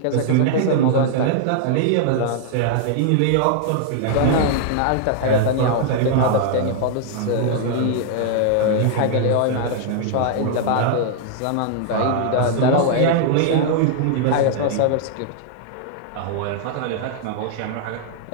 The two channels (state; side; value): different; both; correlation -0.01